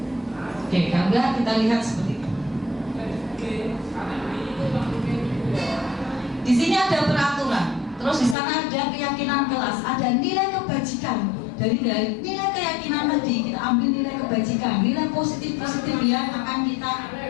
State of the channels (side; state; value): right; drops out; at 8.3 s